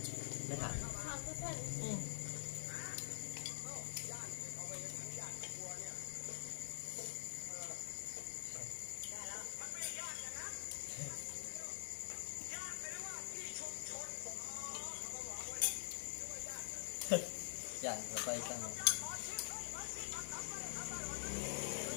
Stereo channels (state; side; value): silent; right; digital silence